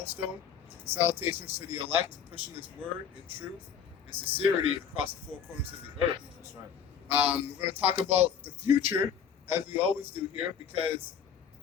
Salutations to the elect, pushing His word in truth and sincerity across the four corners of the earth. That's right. We're going to talk about the future, as we always do here, because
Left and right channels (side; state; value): right; quieter; 7.6 dB